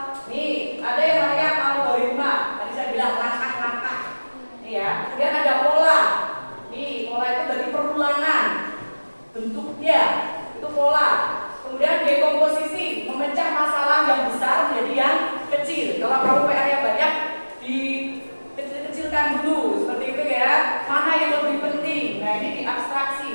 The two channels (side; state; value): both; inverted; correlation -1.00